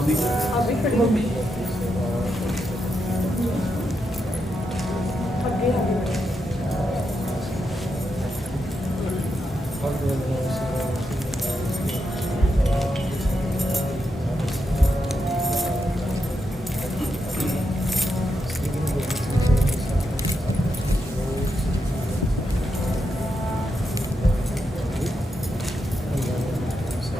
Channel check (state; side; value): normal; both; correlation 0.84